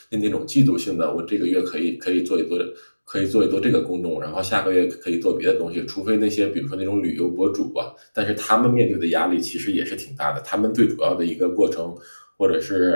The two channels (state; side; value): inverted; both; correlation -1.00